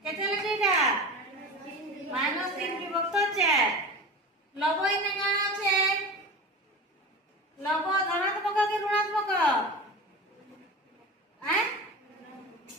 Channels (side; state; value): both; normal; correlation 0.30